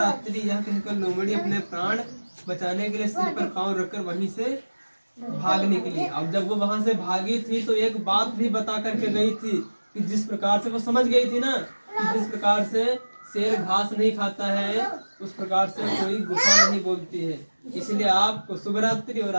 यह कहकर लोमड़ी अपने प्राण बचाने के लिए सिर पर पांव रखकर वहीं से भाग निकली। अब जब वो वहां से भागी थी तो एक बात भी बता करके गई थी कि जिस प्रकार से वो समझ गई थी ना कि जिस प्रकार से शेर घास नहीं खाता है उस प्रकार से कोई गुफा नहीं बोलती है, इसलिए आपको शुभ रात्रि और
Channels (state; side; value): inverted; both; correlation -1.00